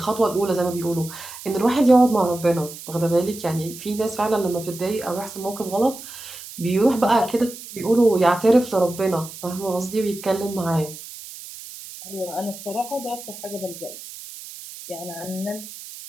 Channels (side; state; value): right; noise; hiss, 14 dB below the sound